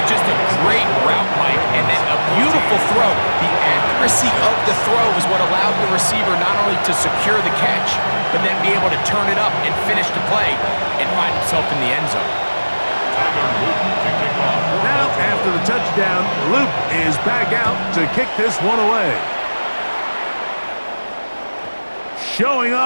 just a great route, Mike, and then a beautiful throw. The accuracy of the throw is what allowed the receiver not only to secure the catch, but then be able to turn it up and finish the play and find himself in the end zone. Now, after the touchdown, Luke is back out to kick this one away. Showing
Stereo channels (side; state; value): both; inverted; correlation -1.00